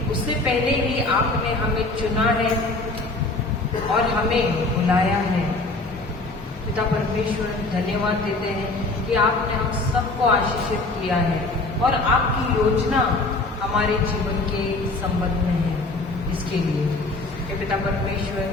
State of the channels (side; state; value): right; quieter; 3.1 dB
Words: उससे पहले ही आपने हमें चुना है और हमें बुलाया है। पिता परमेश्वर, धन्यवाद देते हैं कि आपने हम सबको आशीषित किया है और आपकी योजना हमारे जीवन के संबंध में है। इसके लिए हे पिता परमेश्वर,